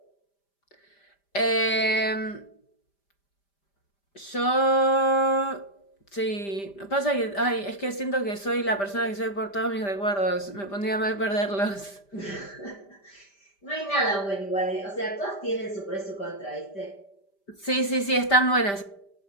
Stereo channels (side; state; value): right; late; 5.1 ms